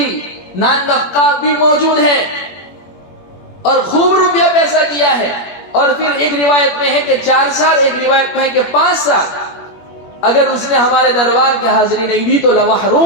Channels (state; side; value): late; right; 21 ms